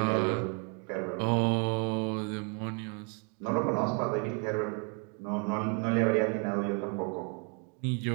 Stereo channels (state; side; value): quieter; left; 37.6 dB